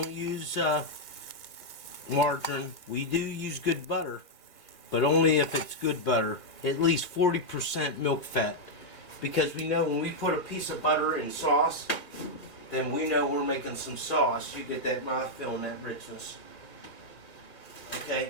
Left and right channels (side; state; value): right; late; 1.7 ms